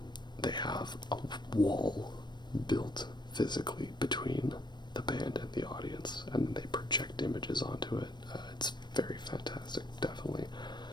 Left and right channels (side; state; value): right; late; 0.22 ms